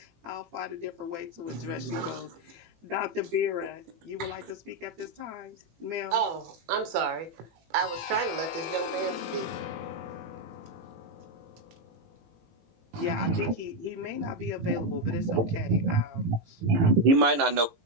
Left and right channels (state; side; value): late; left; 18 ms